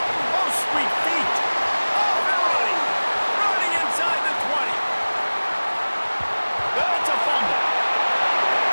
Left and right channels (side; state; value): both; inverted; correlation -1.00